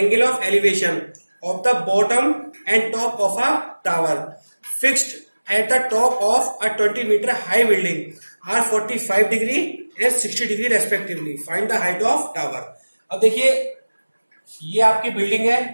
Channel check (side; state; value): both; inverted; correlation -1.00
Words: of elevation of the bottom and top of a tower fixed at the top of a 20 metre high building are 45 degree and 60 degree respectively, find the height of tower. अब देखिए ये आपकी बिल्डिंग